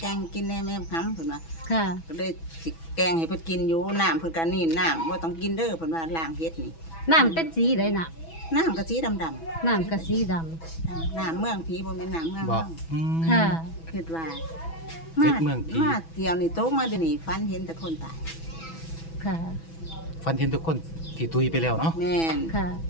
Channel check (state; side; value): late; right; 6.1 ms